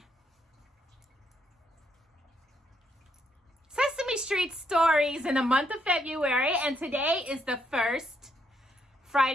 Sesame Street stories in the month of February, and today is the first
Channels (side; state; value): both; normal; correlation 0.75